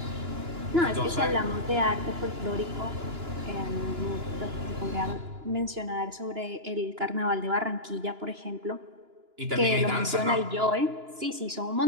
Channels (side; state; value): left; late; 2.9 ms